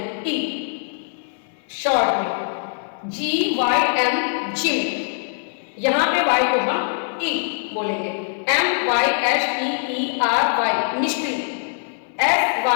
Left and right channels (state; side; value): silent; right; 64 dB below the other